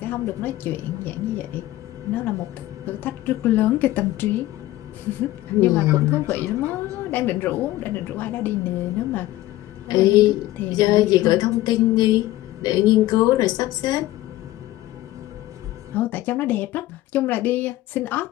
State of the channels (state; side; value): quieter; right; 16.2 dB